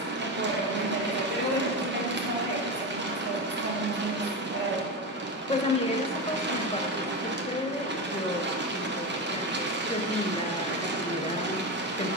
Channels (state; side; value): normal; both; correlation 0.18